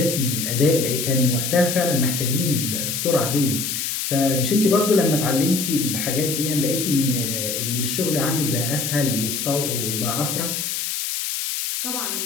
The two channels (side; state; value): left; noise; hiss, 2 dB below the sound